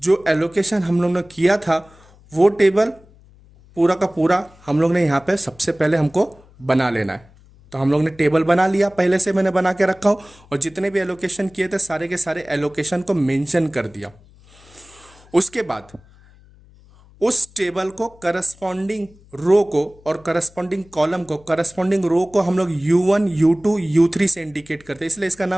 एलोकेशन हम लोग ने किया था वो टेबल पूरा का पूरा हम लोग ने यहाँ पे सबसे पहले हमको बना लेना है। तो हम लोग ने टेबल बना लिया, पहले से मैंने बना के रखा हूँ, और जितने भी एलोकेशन किए थे सारे के सारे एलोकेशन को मेंशन कर दिया। उसके बाद उस टेबल को करस्पॉन्डिंग रो को और करस्पॉन्डिंग कॉलम को, करस्पॉन्डिंग रो को हम लोग U1 U2 U3 से इंडिकेट करते हैं, इसलिए इसका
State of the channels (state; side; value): noise; left; hum, 26 dB below the sound